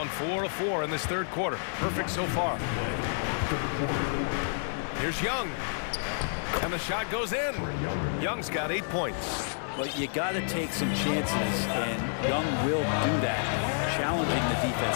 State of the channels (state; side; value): silent; right; digital silence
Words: 4 of 4 in this third quarter. Perfect so far. Here's Young. And the shot goes in. Young's got 8 points. Well, you got to take some chances, and Young will do that, challenging the